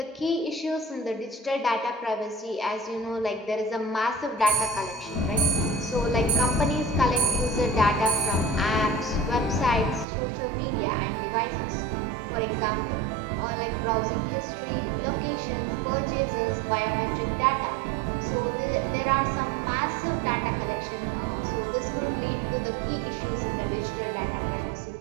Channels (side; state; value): left; drops out; at 10.1 s